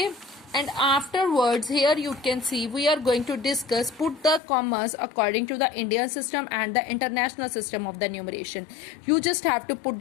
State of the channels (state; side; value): drops out; right; at 4.4 s